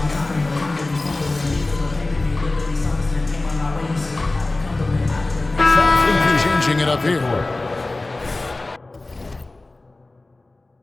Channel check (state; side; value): quieter; right; 3.0 dB